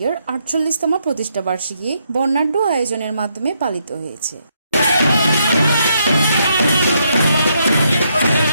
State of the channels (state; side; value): inverted; both; correlation -0.76